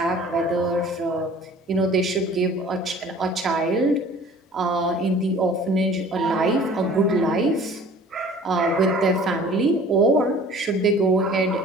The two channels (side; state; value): both; normal; correlation 0.48